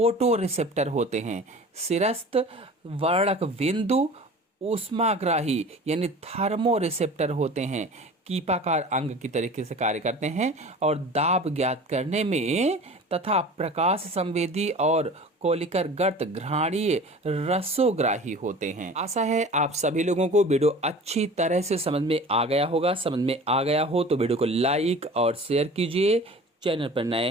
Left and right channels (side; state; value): both; normal; correlation 0.40